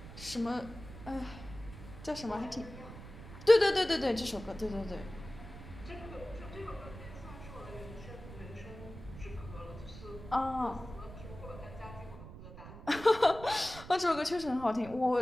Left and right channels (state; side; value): noise; right; rumble, 14 dB below the sound